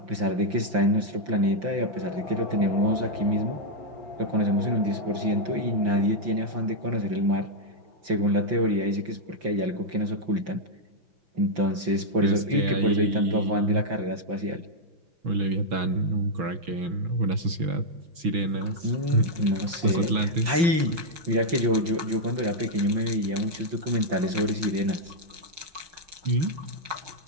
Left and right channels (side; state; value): left; late; 5.8 ms